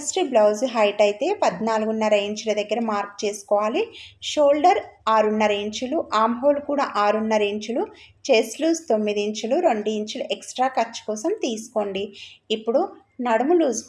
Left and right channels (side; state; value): both; identical; correlation 1.00